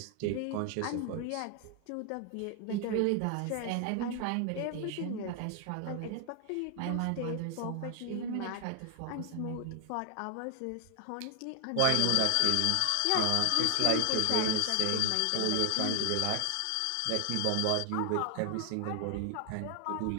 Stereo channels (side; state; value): both; different; correlation 0.00